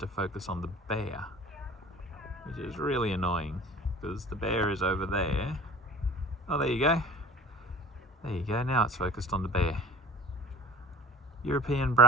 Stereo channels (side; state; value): both; normal; correlation 0.44